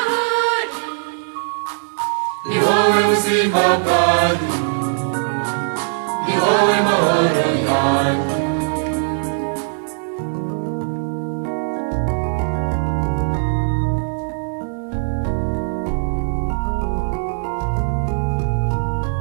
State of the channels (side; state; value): left; silent; digital silence